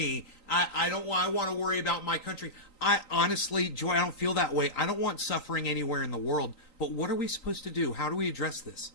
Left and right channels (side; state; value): right; late; 3.9 ms